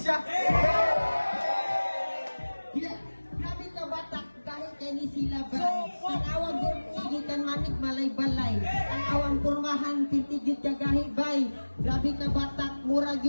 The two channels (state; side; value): inverted; both; correlation -1.00